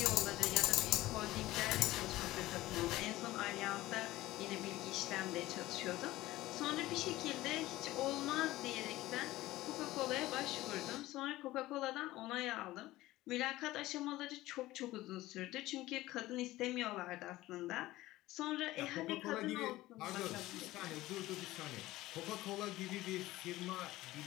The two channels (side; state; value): right; quieter; 17.2 dB